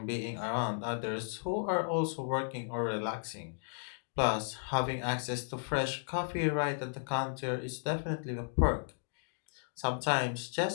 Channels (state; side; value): silent; right; digital silence